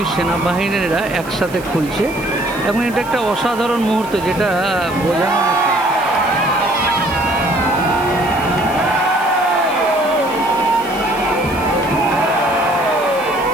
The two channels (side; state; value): right; noise; hiss, 18 dB below the sound